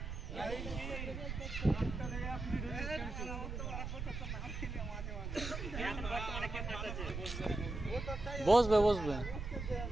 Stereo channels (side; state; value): right; noise; rumble, 6 dB below the sound